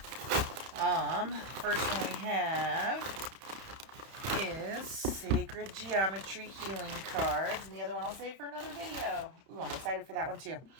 First one we have is Sacred Geometry Healing Cards, and the other one I'll save for another video. Ooh, I'm excited for that one too.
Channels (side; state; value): left; late; 31 ms